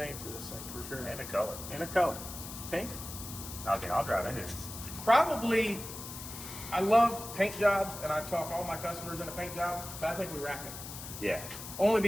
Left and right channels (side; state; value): left; noise; hiss, 10 dB below the sound